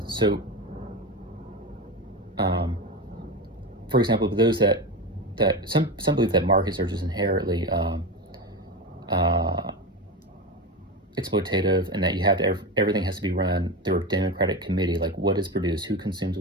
For example, those that some believe that markets are just inherently exploitative, and that you have to, everything has to be run through a democratic committee. Like, what is produced, who consumes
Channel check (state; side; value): normal; both; correlation 0.20